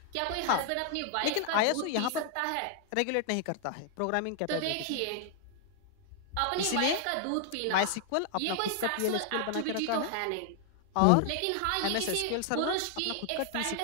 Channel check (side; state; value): both; different; correlation 0.00